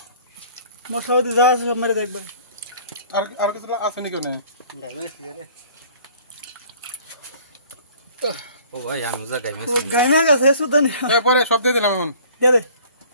মশলা দিয়ে যা আছে সব মেরে দেখবে আর কিছু আছে নাকি ওনে ও ভাই আমি যা গাইমে গাইনা গাছে সুদা নেই পরে সব দিয়ে দিলাম এখন দে দে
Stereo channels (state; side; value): inverted; both; correlation -0.51